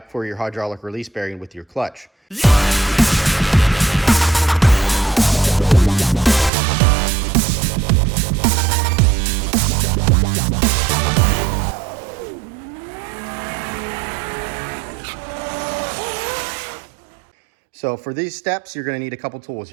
for your hydraulic release bearing with your clutch. So for these steps, you're going to need a couple tools.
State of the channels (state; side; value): drops out; left; at 6.5 s